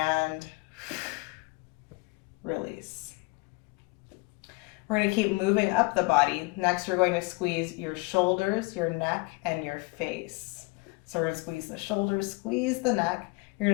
release. We're going to keep moving up the body. Next, we're going to squeeze your shoulders, your neck, and your face. So we're going to squeeze the shoulders, squeeze the neck. You're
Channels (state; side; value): quieter; right; 27.1 dB